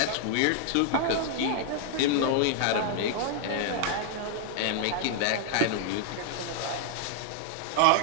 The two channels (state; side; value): different; both; correlation 0.00